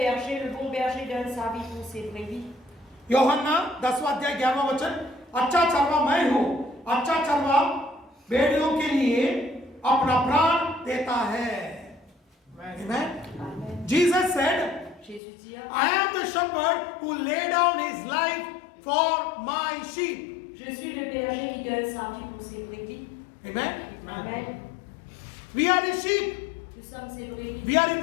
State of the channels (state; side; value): drops out; right; at 15.2 s